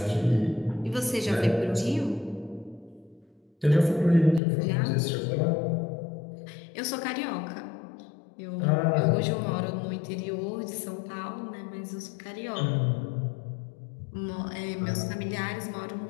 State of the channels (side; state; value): right; drops out; at 4.4 s